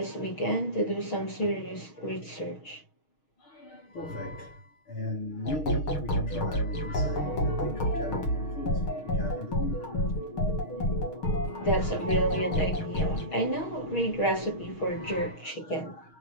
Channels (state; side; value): late; right; 6.4 ms